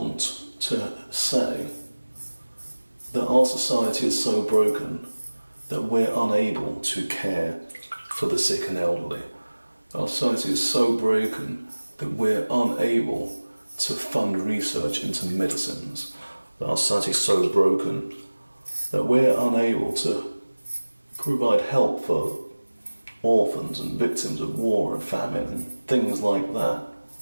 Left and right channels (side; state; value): both; inverted; correlation -1.00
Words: to say that our society is so broken that we're unable to care for the sick and elderly. Our society is so broken that we're unable to fund research into medicines. That our society is so broken that we're unable to provide help for orphans and victims of war and famine and things like that.